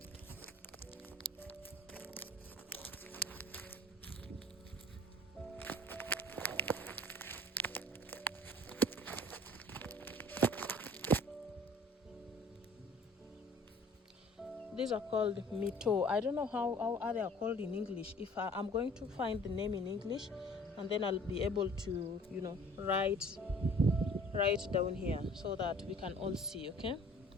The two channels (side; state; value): both; normal; correlation 0.50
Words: These are called mito. I don't know how they are called in English. If I'm going to find the name in English, and then I'll be able to, write down here so that we can all see, okay?